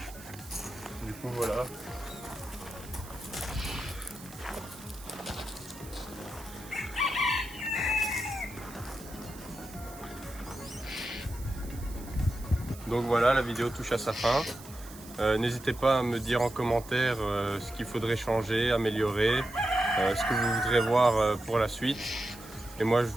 Du coup voilà. Donc voilà, la vidéo touche à sa fin. N'hésitez pas à me dire en commentaire ce qu'il faudrait changer, améliorer, ce que vous voudrez voir pour la suite. Et moi je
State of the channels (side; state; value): right; noise; hiss, 18 dB below the sound